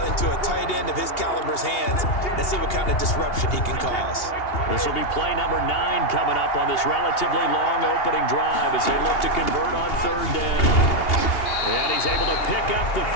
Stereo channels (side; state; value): right; late; 2.8 ms